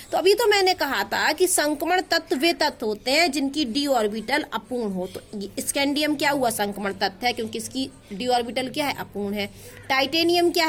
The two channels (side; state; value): both; identical; correlation 1.00